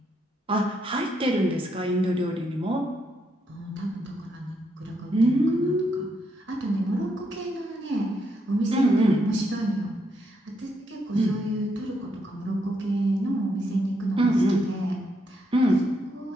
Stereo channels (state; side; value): normal; both; correlation 0.78